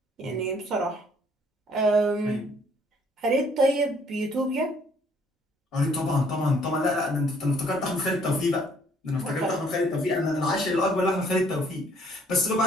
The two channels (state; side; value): normal; both; correlation 0.62